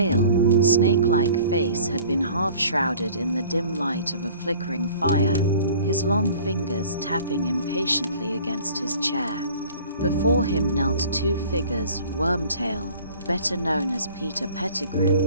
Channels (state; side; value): inverted; both; correlation -0.48